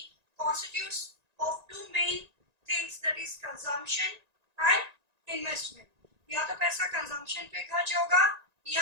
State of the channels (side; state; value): left; late; 1.9 ms